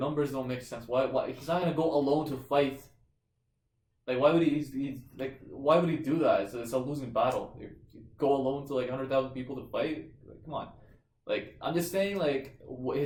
don't make sense. Why he's not gonna go alone to fight? Like, why would why would he do that? It's a losing battle. You go alone to like 100,000 people to fight? Like, come on. Like, I'm just saying, like,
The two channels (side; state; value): both; identical; correlation 1.00